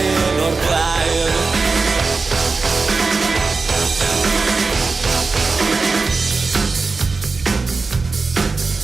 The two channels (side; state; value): left; quieter; 4.1 dB